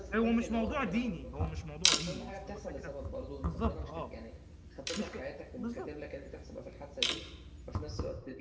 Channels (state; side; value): identical; both; correlation 1.00